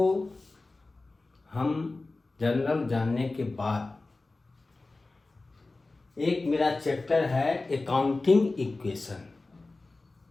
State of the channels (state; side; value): quieter; right; 3.3 dB